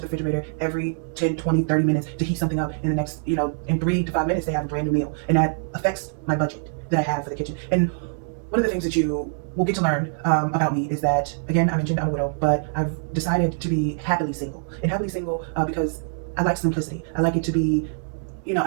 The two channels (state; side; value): silent; left; digital silence